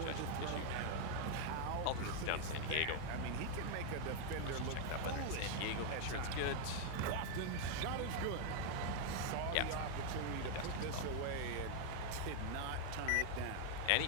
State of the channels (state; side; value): different; both; correlation 0.00